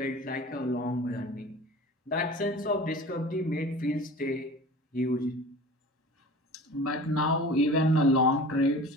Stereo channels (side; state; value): both; normal; correlation 0.39